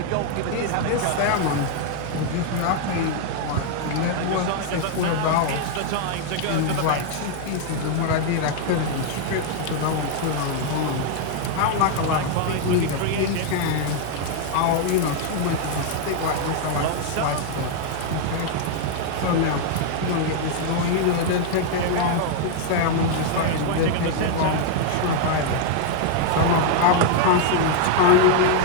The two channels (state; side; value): different; both; correlation 0.00